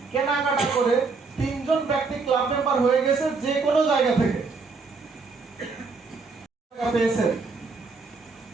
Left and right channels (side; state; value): left; quieter; 4.4 dB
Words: কেনাকাটা করে 3 জন ব্যক্তি ক্লাব মেম্বার হয়ে গেছে যে কোনো জায়গা থেকে, পেয়েছে